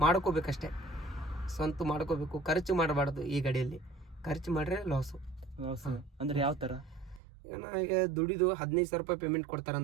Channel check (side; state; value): left; drops out; at 7.2 s